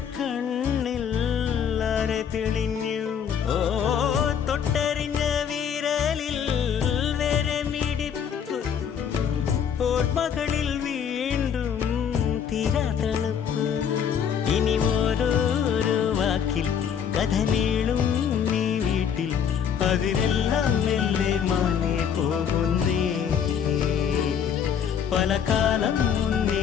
കണ്ണിൽ അരെ തെളിഞ്ഞു ഓ തൊട്ടറിഞ്ഞ വിരലിൽ വരെ മിടിപ്പ് ഓർമ്മകളിൽ വീണ്ടും തീരാ തണുപ്പ് ഇനി ഓരോരോ വാക്കിൽ കഥ നീളും നീ വീട്ടിൽ അതിനെല്ലാം മെല്ലെ മാനേ പോകുന്നേ പല കാലം മുന്നേ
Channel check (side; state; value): right; quieter; 7.9 dB